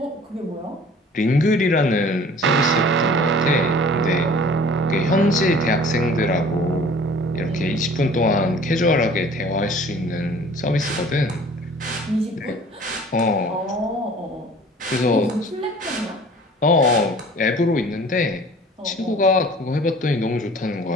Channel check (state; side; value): normal; both; correlation 0.48